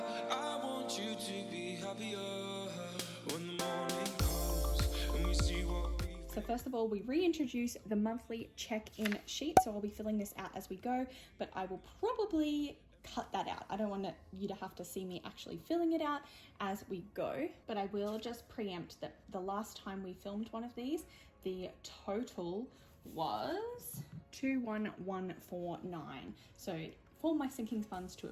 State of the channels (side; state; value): both; identical; correlation 1.00